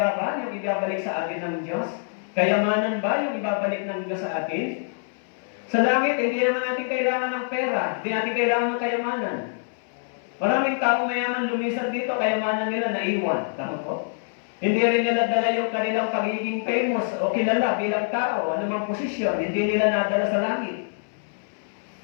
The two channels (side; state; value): right; silent; 60 dB below the other